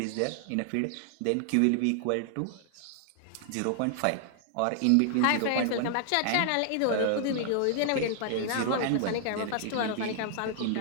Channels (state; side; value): different; both; correlation 0.00